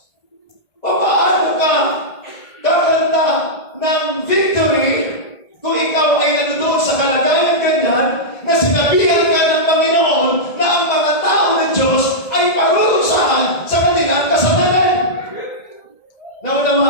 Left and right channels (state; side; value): late; right; 1.8 ms